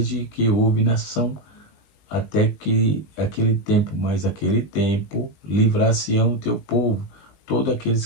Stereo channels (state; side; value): late; right; 19 ms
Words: que houve nação, até que aquele tempo, mas aquele tempo livrar-se-ão o teu povo, todos aqueles